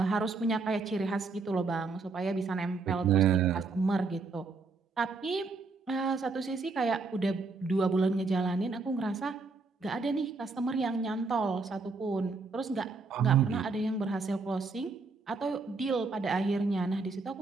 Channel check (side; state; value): left; quieter; 4.1 dB